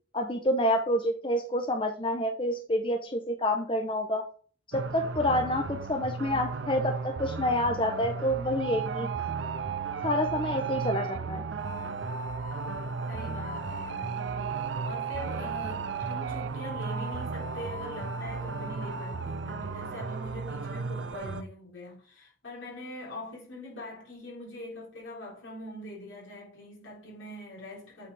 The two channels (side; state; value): both; normal; correlation 0.21